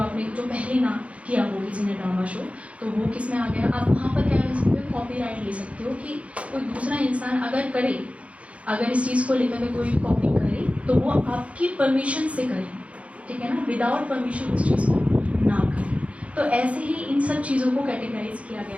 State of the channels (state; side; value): late; left; 0.063 ms